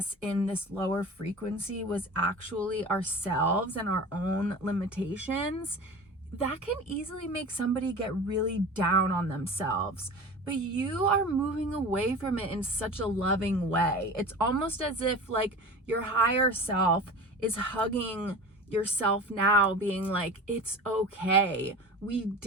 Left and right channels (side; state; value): both; normal; correlation 0.34